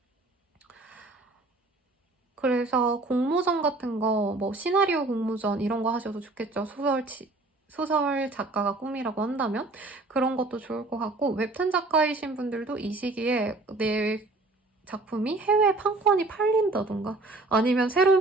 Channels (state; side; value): quieter; left; 3.1 dB